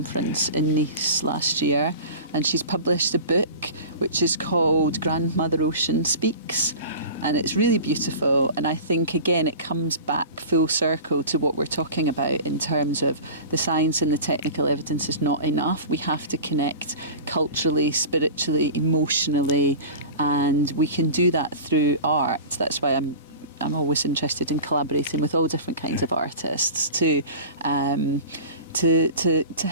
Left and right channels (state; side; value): inverted; both; correlation -0.35